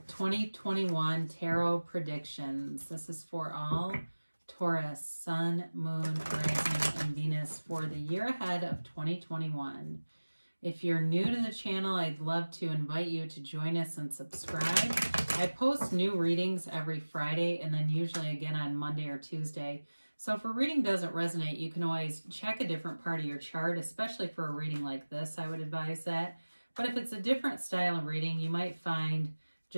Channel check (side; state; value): both; inverted; correlation -1.00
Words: 2021 Tarot predictions. This is for all Taurus, Sun, Moon, Rising, and Venus for the year ahead of 2021. If you're new to the channel, I'd love to invite you to join us and subscribe. I post new readings every Friday and then usually again on Monday or Tuesday. So if a reading doesn't resonate, you can always check a different part of your chart, especially for a reading like this, I would advise that. But if it's a different style of reading, you might find